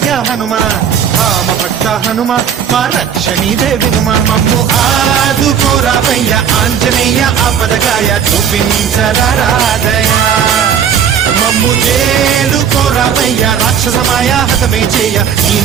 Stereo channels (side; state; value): left; quieter; 8.1 dB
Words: హనుమా రామ భక్త హనుమా మా రక్షణీదే వినుమా మమ్ము ఆదుకోరావయ్యా ఆంజనేయ ఆపదకాయ చూపించరాదయా మమ్ము చేడు కోరావయ్యా రాక్షసమాయ హతమే చేయ ఈ